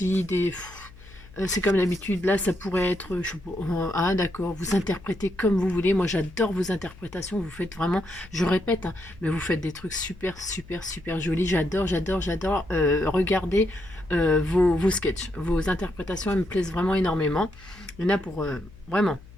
c'est comme d'habitude, là ça pourrait être, ah d'accord, vous interprétez comme vous voulez, moi j'adore vos interprétations, vous faites vraiment, je répète, hein, mais vous faites des trucs super jolis, j'adore, regardez vos sketchs, vos interprétations, elles me plaisent vraiment énormément, il y en a pour, vraiment.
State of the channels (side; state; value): left; noise; hum, 21 dB below the sound